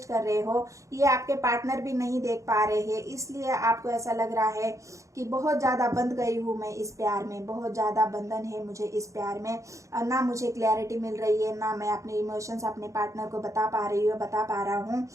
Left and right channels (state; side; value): late; left; 0.15 ms